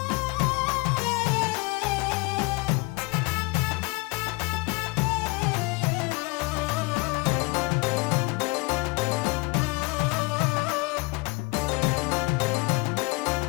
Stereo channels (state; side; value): quieter; right; 26.5 dB